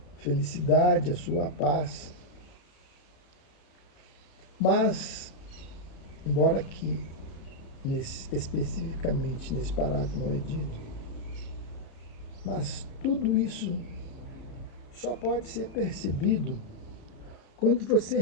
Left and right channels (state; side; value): late; right; 33 ms